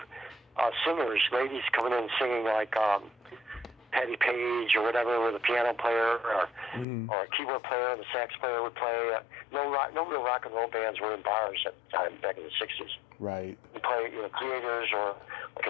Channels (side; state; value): right; drops out; at 6.9 s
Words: singers, ladies coming in singing like Patty Page or whatever, with a piano player or a keyboard player, and the sax player would play. No real rock and roll bands were in bars at the time, back in the 60s. Right. You play, Creators, or like